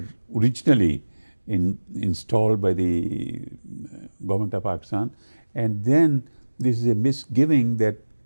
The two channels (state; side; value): inverted; both; correlation -1.00